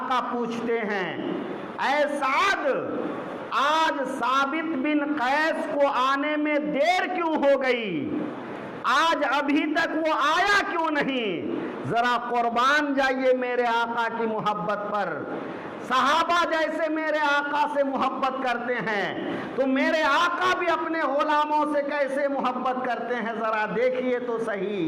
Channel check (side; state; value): both; identical; correlation 1.00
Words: پوچھتے ہیں اے سعد، آج ثابت بن قیس کو آنے میں دیر کیوں ہو گئی؟ آج ابھی تک وہ آیا کیوں نہیں؟ ذرا قربان جائیے میرے آقا کی محبت پر۔ صحابہ جیسے میرے آقا سے محبت کرتے ہیں تو میرے آقا بھی اپنے غلاموں سے کیسے محبت کرتے ہیں، ذرا دیکھیے تو